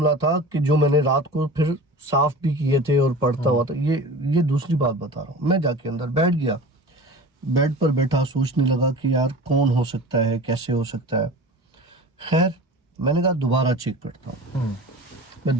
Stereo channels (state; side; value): normal; both; correlation 0.36